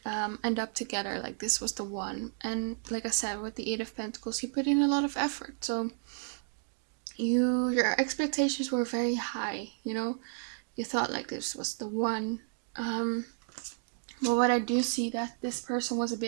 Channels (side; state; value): left; silent; digital silence